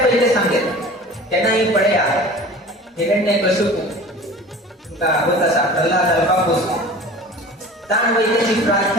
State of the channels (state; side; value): normal; both; correlation 0.40